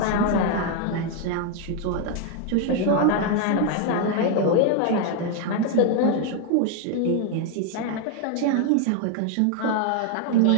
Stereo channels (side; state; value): both; different; correlation 0.01